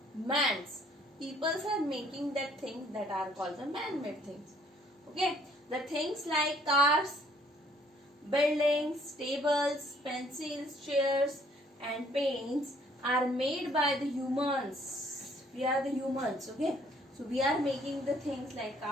man's, peoples are making that things that are called the man-made things. Okay, the things like cars, buildings, tables, pencils, chairs and paints are made by the humans. We are the humans. Okay, so we are making the things like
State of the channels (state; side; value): normal; both; correlation 0.62